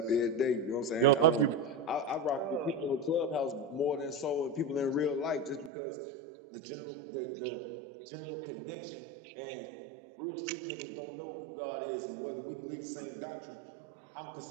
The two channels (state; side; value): drops out; left; at 5.7 s